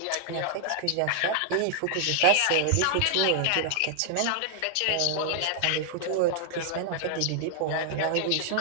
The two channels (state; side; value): different; both; correlation 0.00